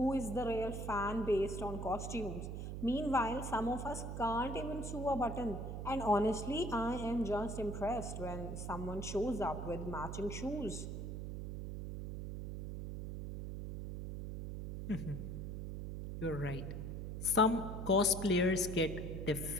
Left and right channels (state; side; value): noise; right; hum, 6 dB below the sound